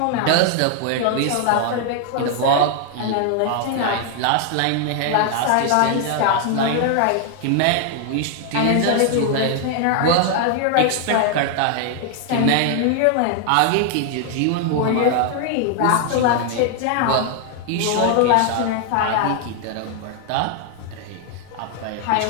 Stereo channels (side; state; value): both; different; correlation 0.00